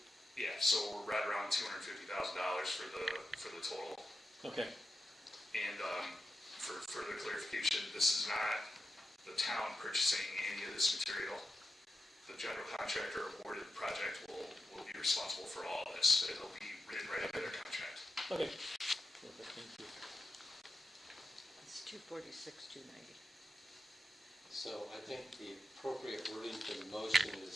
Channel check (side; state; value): both; normal; correlation 0.90